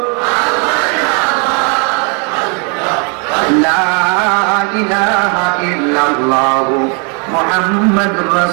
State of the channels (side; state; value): left; quieter; 36.9 dB